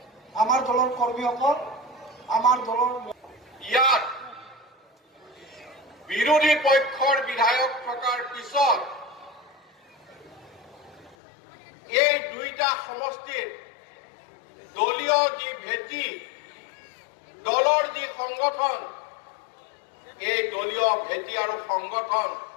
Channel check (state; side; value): drops out; right; at 11.2 s